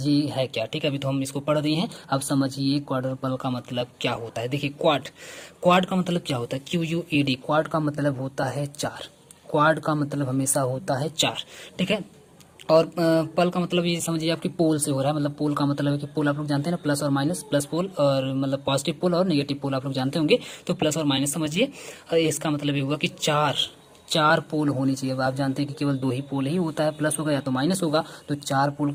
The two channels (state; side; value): identical; both; correlation 1.00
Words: है क्या। ठीक है, अभी तो हम इसको पढ़ रहे हैं, अब समझिए क्वाड्रपल का मतलब क्या होता है। देखिए क्वाड का मतलब क्या होता है, QUAD, क्वाड का मतलब होता है 4। क्वाड का मतलब हमेशा होता है 4। ठीक है, और पल का मतलब ये समझिए आपकी पोल से हो रहा है। मतलब पोल का मतलब है कि पोल आप लोग जानते हैं ना, प्लस और माइनस, प्लस पोल और मतलब पॉजिटिव पोल और नेगेटिव पोल आप लोग जानते होंगे। तो प्लस और माइनस समझिए। इसका मतलब ये हुआ कि चार पोल होनी चाहिए। अब आप जानते हैं कि केवल 2 ही पोल ही होता है, प्लस होगा या तो माइनस होगा। तो 4 पोल